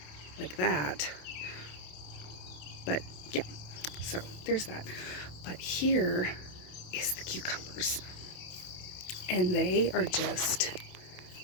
like that. But yeah, so there's that. But here is the cucumbers, and they are just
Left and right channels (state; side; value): late; right; 27 ms